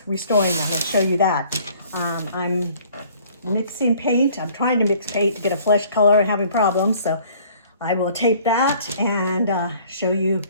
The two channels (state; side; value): inverted; both; correlation -0.55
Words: restoring them. I'll show you that. I'm mixing paint. I'm trying to mix paint to get a flesh color and having problems. So I will tape that and show you